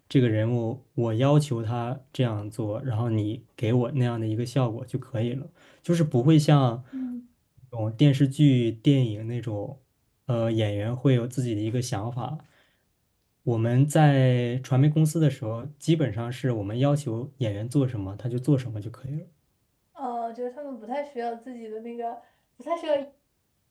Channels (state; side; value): identical; both; correlation 1.00